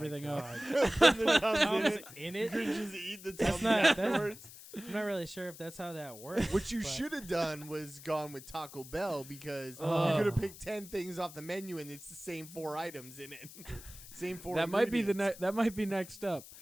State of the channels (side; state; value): left; noise; hiss, 16 dB below the sound